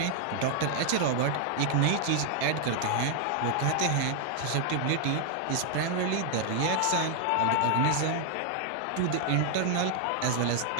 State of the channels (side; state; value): both; different; correlation 0.00